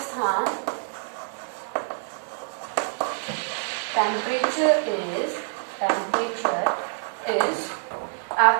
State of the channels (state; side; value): silent; left; 61 dB below the other